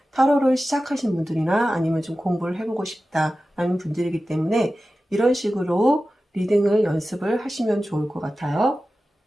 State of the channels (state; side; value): normal; both; correlation 0.94